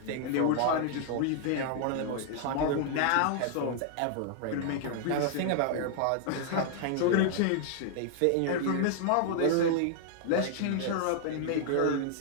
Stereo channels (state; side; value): different; both; correlation 0.00